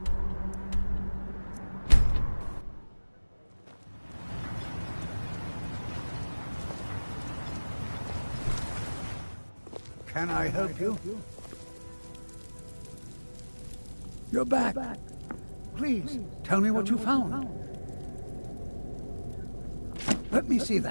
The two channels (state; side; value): inverted; both; correlation -1.00